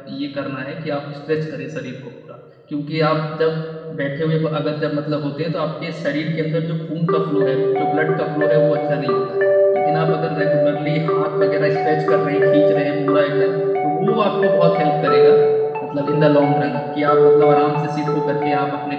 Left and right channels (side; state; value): both; identical; correlation 1.00